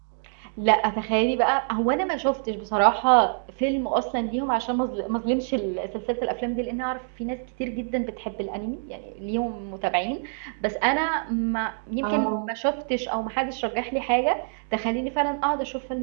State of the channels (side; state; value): left; silent; digital silence